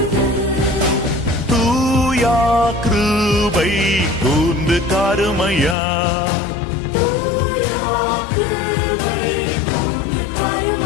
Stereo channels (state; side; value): drops out; right; at 5.8 s